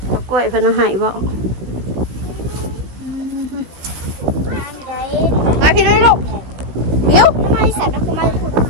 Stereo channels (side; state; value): left; late; 16 ms